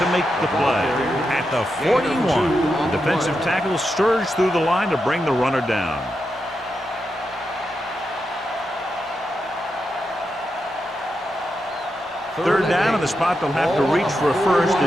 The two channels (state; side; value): normal; both; correlation 0.86